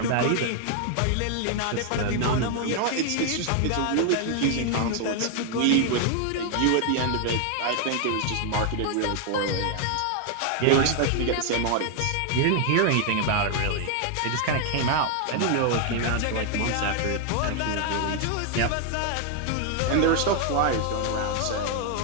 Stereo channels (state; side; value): different; both; correlation 0.00